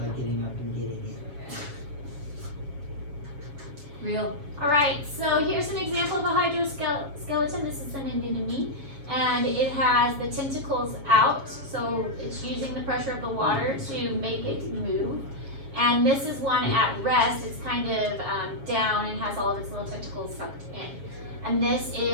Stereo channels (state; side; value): late; left; 7.1 ms